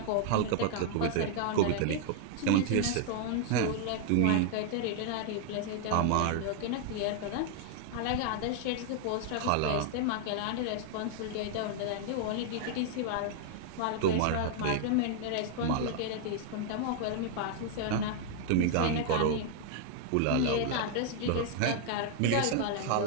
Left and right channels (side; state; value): both; different; correlation -0.01